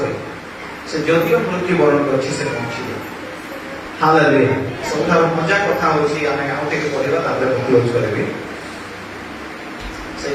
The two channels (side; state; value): both; identical; correlation 1.00